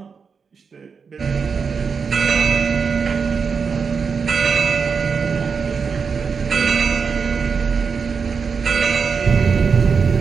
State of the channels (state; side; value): quieter; left; 5.7 dB